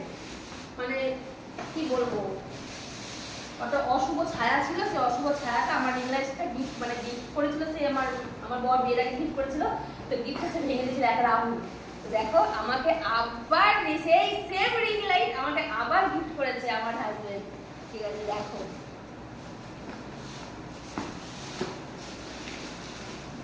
মানে কি বলবো, কত অশুভ ছায়া ছিল। সেই অশুভ ছায়াটা আমার রিং লাইটটা গিফট করেছিল। সে আমার বর বিয়ের আগে গিফট করেছিল। তো গিফটটা সে ভেঙে দিয়েছিল এক রাহুল। তো দেখো, আমাকে আবার সেই সেম রিং লাইট আমাকে আবার গিফট করেছে আমার হাজবেন্ড। ঠিক আছে, দেখো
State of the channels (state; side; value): identical; both; correlation 1.00